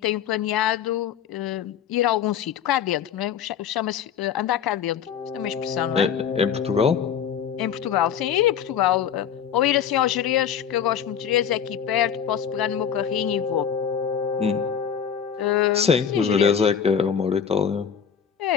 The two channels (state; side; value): quieter; right; 8.1 dB